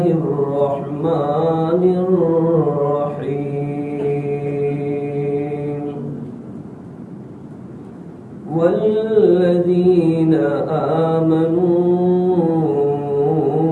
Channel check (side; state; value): both; identical; correlation 1.00